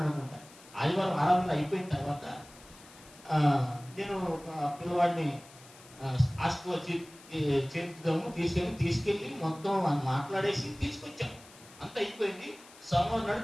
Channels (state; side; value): noise; left; hiss, 22 dB below the sound